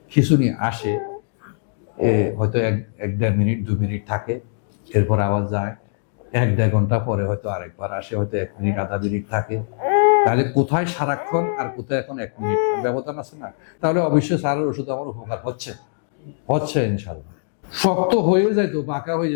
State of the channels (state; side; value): silent; right; digital silence